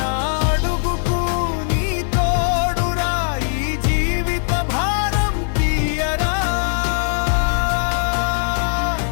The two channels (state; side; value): silent; right; digital silence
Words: అడుగుకు నీ తోడురా ఈ జీవిత భారం తీయరా